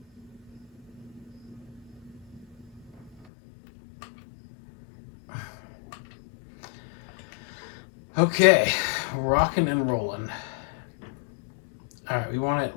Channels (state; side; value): drops out; right; at 3.2 s